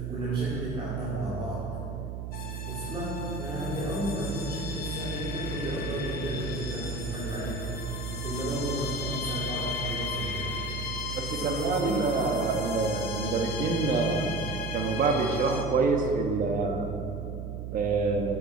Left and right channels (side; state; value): right; noise; hum, 6 dB below the sound